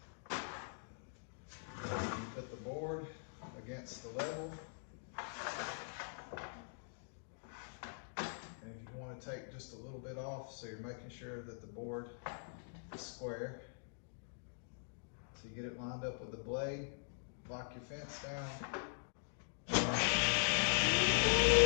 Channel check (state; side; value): silent; right; digital silence